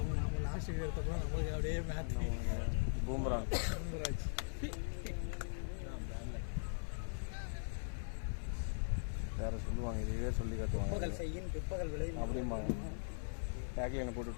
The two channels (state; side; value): silent; right; 51 dB below the other